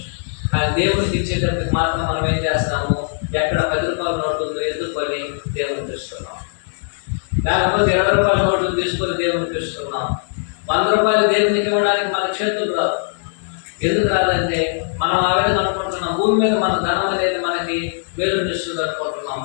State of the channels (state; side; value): silent; right; digital silence